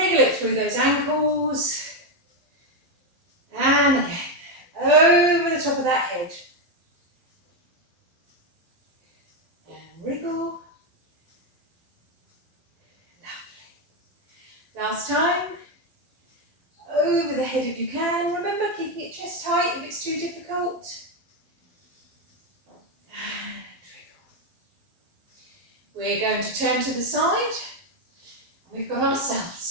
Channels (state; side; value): late; left; 12 ms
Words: it through those ankles. And again, over the top of that head. And wriggle. Lovely. Last time. Over the head if you can. Remember, keeping it chest height if it's too difficult. And wriggle. We're going to turn to the side. We've got our